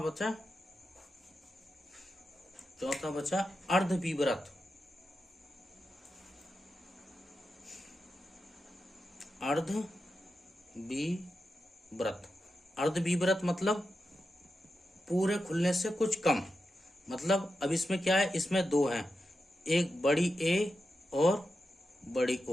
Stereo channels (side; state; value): both; normal; correlation 0.89